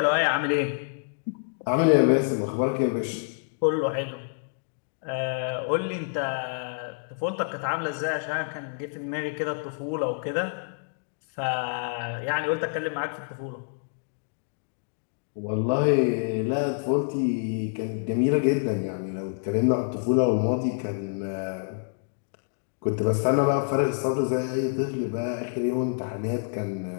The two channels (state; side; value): silent; right; digital silence